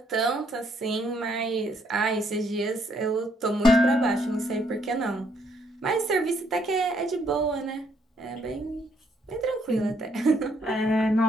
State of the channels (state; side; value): normal; both; correlation 0.70